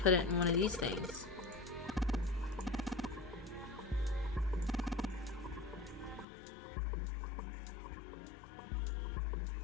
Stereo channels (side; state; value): right; drops out; at 6.2 s